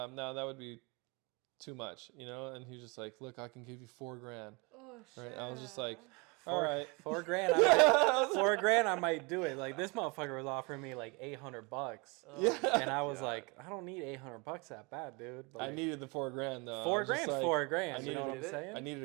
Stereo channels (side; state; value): left; quieter; 28.6 dB